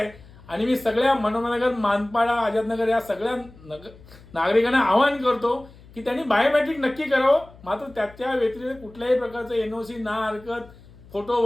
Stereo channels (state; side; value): noise; left; hum, 22 dB below the sound